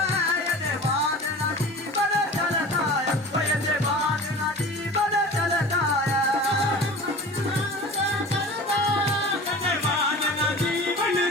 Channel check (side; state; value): both; normal; correlation 0.37